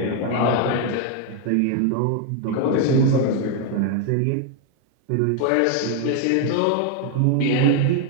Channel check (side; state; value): both; different; correlation 0.01